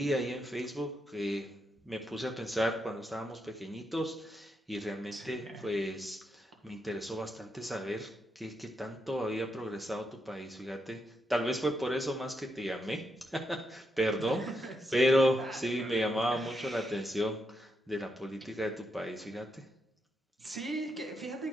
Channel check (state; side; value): normal; both; correlation 0.82